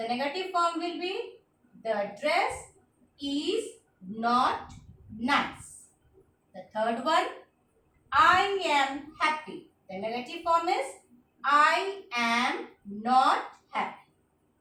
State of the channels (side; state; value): both; identical; correlation 1.00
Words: negative form will be the dress is not nice. The third one. I am happy. The negative form is I am not happy.